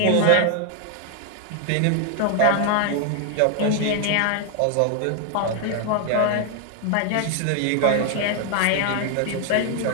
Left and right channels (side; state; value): both; different; correlation 0.00